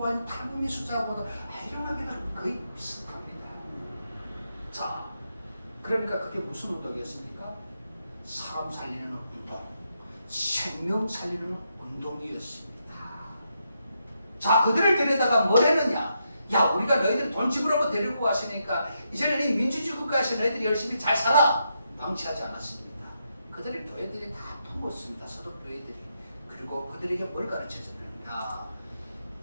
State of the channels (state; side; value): inverted; both; correlation -0.81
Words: 있는 탈북민 숫자보다 아이러니하게도 거의 비슷합니다. 자, 그러니까 그게 무슨 운동이었습니까? 사람 살리는 운동, 생명 살리는 운동이었습니다. 자, 그들을 데려다가 뭘 했느냐? 야, 우리가 너희들 돈 지불하고 데리고 왔으니까 이제는 이 민주주의 국가에서 너희들이 열심히 잘 살아. 방치하지 않았습니다. 그들의 교회들이 다 품었습니다. 서독 교회들이. 그리고 그들에게 뭘 가르쳐줬느냐?